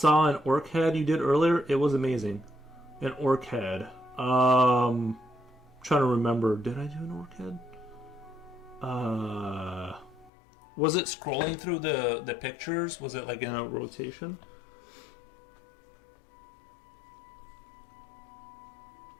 an orc head you did earlier. It was amazing. An orc head. Trying to remember. Did I do an orc head? Was it scrolling through the pictures? Was it like in a rotation?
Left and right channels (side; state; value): right; drops out; at 10.3 s